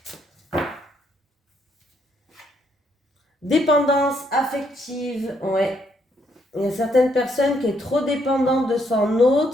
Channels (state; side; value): normal; both; correlation 0.72